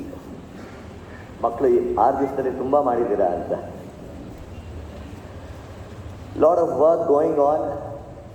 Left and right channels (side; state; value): both; identical; correlation 1.00